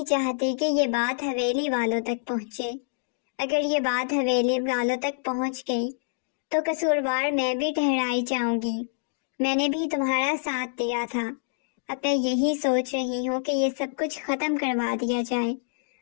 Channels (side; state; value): right; silent; digital silence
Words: چاہتی کہ یہ بات حویلی والوں تک پہنچے۔ اگر یہ بات حویلی والوں تک پہنچ گئی تو قصوروار میں بھی ٹھہرائی جاؤں گی۔ میں نے بھی تمہارا ساتھ دیا تھا، اب میں یہی سوچ رہی ہوں کہ یہ سب کچھ ختم کروا دیا جائے